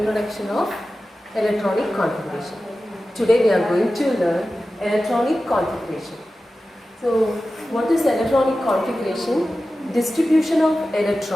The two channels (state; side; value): normal; both; correlation 0.94